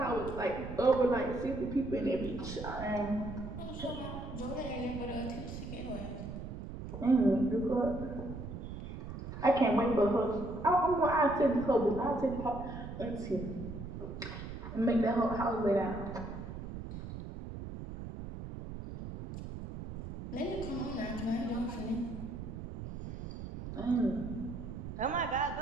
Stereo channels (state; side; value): noise; right; rumble, 8 dB below the sound